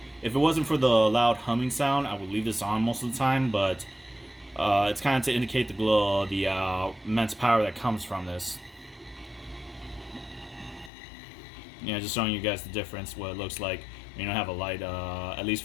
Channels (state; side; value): drops out; right; at 10.9 s